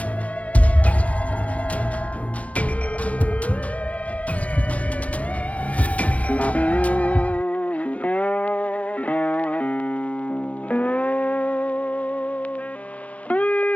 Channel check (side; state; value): right; late; 0.066 ms